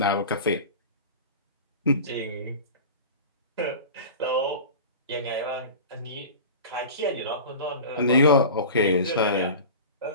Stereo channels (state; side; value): inverted; both; correlation -0.34